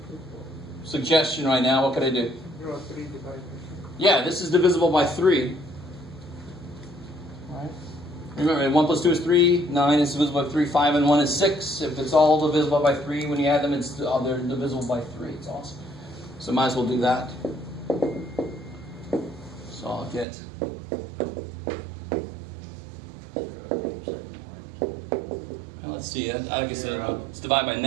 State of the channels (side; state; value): left; drops out; at 20.2 s